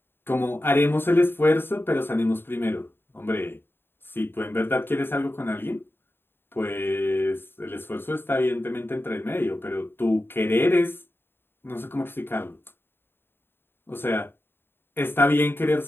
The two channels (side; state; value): right; late; 0.11 ms